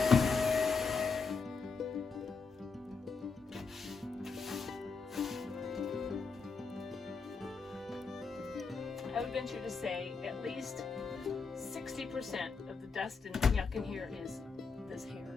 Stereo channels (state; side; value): quieter; right; 4.8 dB